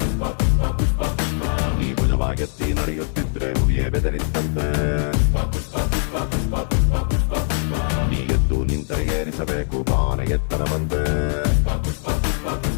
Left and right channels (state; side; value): silent; right; 60 dB below the other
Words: ನೀ ಭುಜವಾಗೆತ್ತಿ ನಡೆಯುತ್ತಿದ್ರೆ ಹುಲಿಯೇ ಬೆದರಿತ್ತಂತೆ ನೀ ಎದ್ದು ನಿಂತರೆ ಏರಿಸಬೇಕು ಬಾನ ಎತ್ತರ ಬಂದೆ